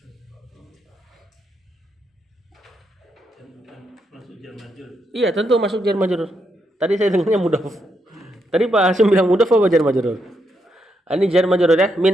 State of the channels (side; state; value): both; normal; correlation 0.80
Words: Iya, tentu masuk jar majrur. Tadi saya dengarnya mudhaf. Tadi Pak Hasim bilang mudhaf apa jar majrur? Ini jar majrur ya.